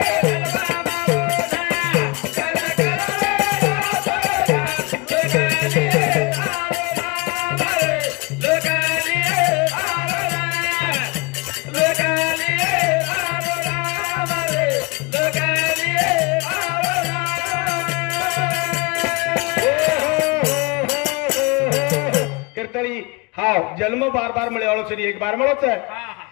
कीर्तनी हाव जन्म बार बार मिळे वाळो सरी एक बार मिळोच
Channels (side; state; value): right; quieter; 27.3 dB